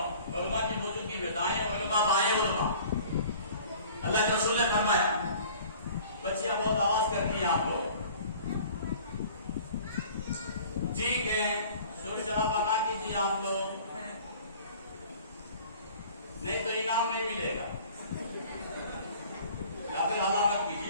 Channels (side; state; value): both; inverted; correlation -0.48